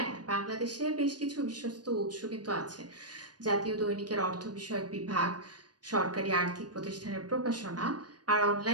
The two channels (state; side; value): late; left; 0.69 ms